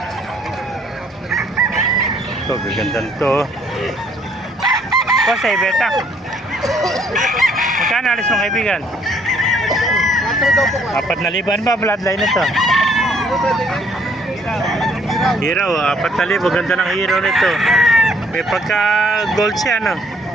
Ito, gagandang to. Kasi beta. Magkano alis mong kaibigan? 4,000 ba bloodline ito? Hero, 4,000, ganda ng hero nito. May pagka gold siya no.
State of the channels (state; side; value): normal; both; correlation 0.64